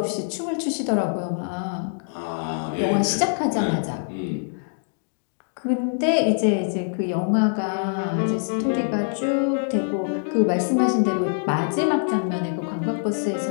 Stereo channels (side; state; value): right; silent; digital silence